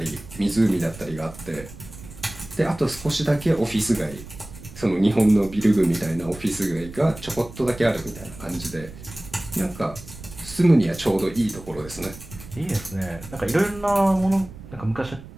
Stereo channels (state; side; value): noise; right; rumble, 16 dB below the sound